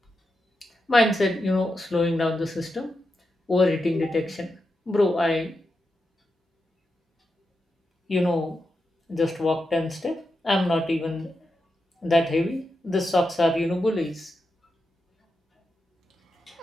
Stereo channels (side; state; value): both; normal; correlation 0.87